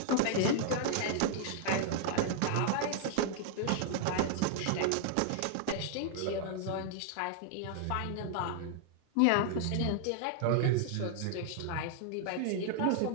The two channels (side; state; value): both; different; correlation 0.00